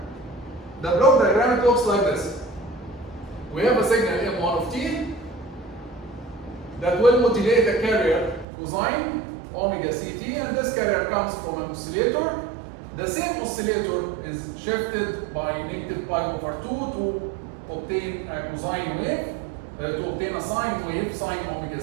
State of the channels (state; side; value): drops out; left; at 8.5 s